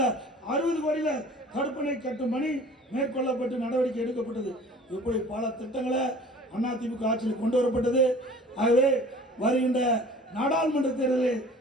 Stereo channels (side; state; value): both; normal; correlation 0.47